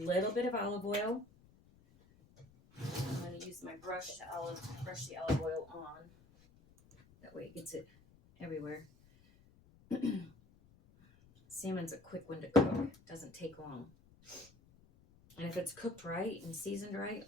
bit of olive oil. I'm going to use my brush to brush the olive oil on. That way it gets it everywhere. Salmon's a quick one to cook. Doesn't take long. And if it's cooked right and seasoned right,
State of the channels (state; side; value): noise; left; rumble, 26 dB below the sound